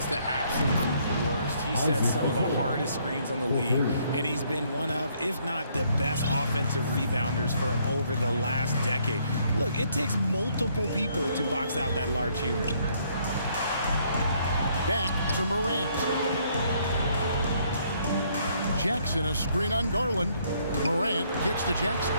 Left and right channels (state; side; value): inverted; both; correlation -0.68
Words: the absolute worst. He sets some of the hardest screens on the league, and he's been one of, if not the best offensive rebounders for over the last decade. Look, it takes multiple people to box out that large human. Back to Morant. Jackson, a screen on Garland. Morant kicks to Jackson.